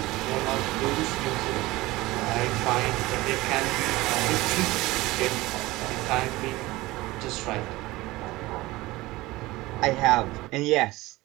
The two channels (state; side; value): quieter; left; 19.4 dB